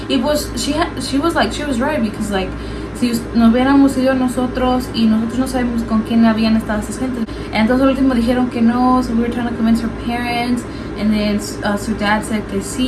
Y pues she was right, because, like, si nos hubiéramos ido nosotros y nosotros no sabemos con quién habían estado esas gentes. Entonces al último dijeron que no, so we were trying to convince her parents, and then su dad said que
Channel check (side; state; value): both; identical; correlation 1.00